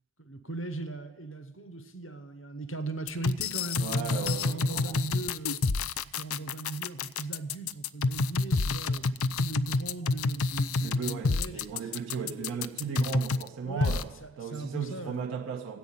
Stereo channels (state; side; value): normal; both; correlation 0.62